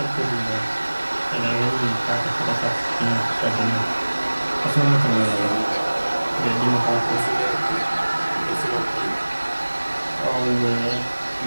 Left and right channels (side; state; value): both; inverted; correlation -1.00